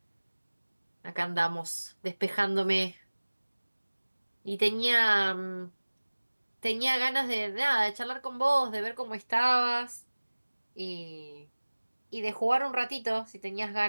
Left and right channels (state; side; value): inverted; both; correlation -1.00